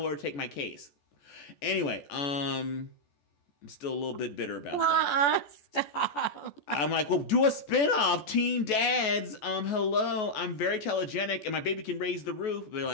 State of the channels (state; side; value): late; right; 14 ms